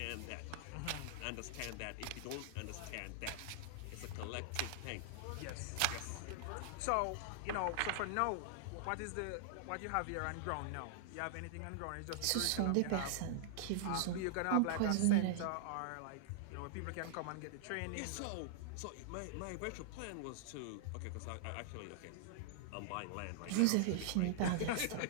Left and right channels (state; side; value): different; both; correlation -0.01